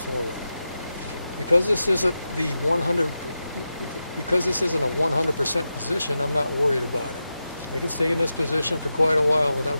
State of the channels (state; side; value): inverted; both; correlation -0.91